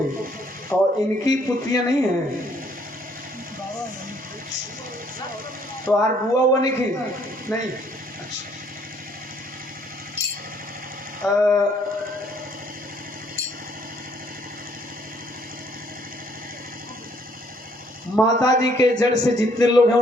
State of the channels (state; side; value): normal; both; correlation 0.64